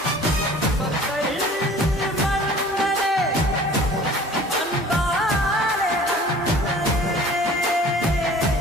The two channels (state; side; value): normal; both; correlation 0.47